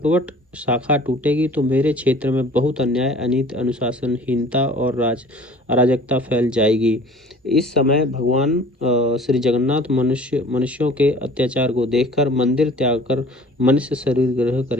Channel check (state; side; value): normal; both; correlation 0.48